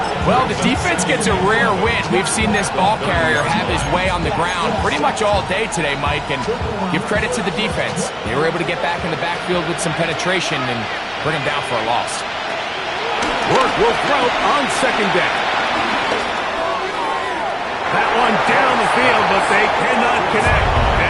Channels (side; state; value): both; identical; correlation 1.00